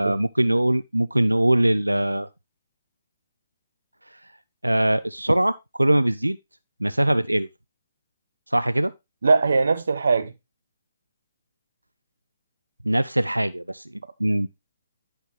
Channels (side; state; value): both; inverted; correlation -0.98